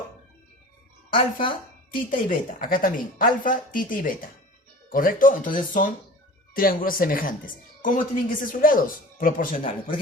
alfa, tita y beta. Acá también, alfa, tita y beta. ¿Correcto? Entonces son triángulos semejantes. ¿Cómo tienen que ser sus lados? Proporcionales. Por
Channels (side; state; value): both; normal; correlation 0.40